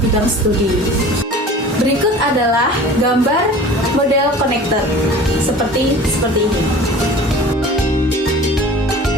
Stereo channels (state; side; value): normal; both; correlation 0.42